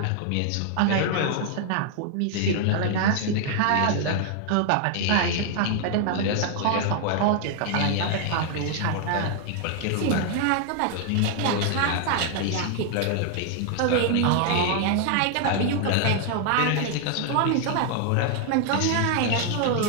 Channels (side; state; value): both; different; correlation 0.00